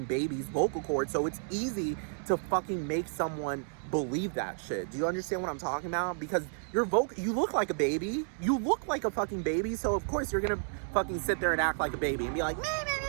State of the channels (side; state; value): left; silent; 57 dB below the other